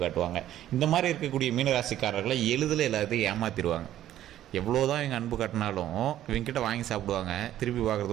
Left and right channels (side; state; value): left; quieter; 12.5 dB